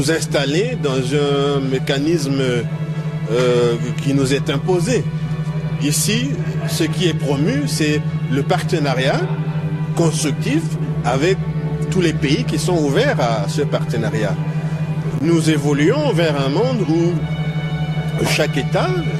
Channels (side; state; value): both; identical; correlation 1.00